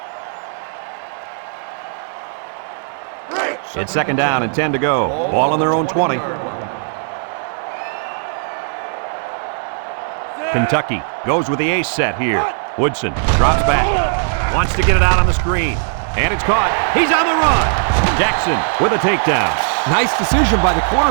It's second down and 10 to go. Ball on their own 20. Kentucky goes with the ace set here. Woodson drops back. Wants to get it out on the screen. And it's caught. He's on the run. Jackson with a takedown. Nice decision by the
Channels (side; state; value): left; silent; digital silence